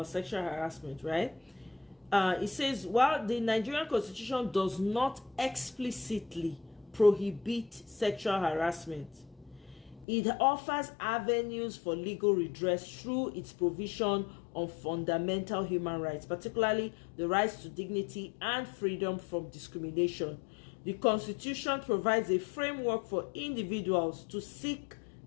sexual harassment, right? It says, while the Nigerian Constitution does not explicitly prohibit sexual harassment, it offers avenues for legal redress through its provision on fundamental human rights, particularly the rights to dignity and freedom from discrimination. The Constitution provides a framework for individuals to seek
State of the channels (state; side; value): drops out; right; at 10.1 s